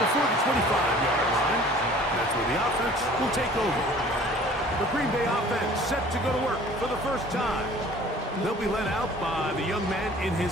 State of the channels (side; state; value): both; normal; correlation 0.49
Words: the 25-yard line. That's where the offense will take over. The Green Bay offense set to go to work for the first time. They'll be led out by the young man in